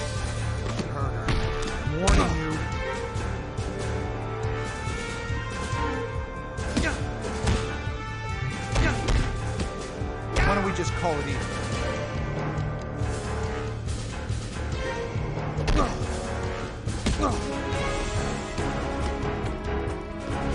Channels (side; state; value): both; identical; correlation 1.00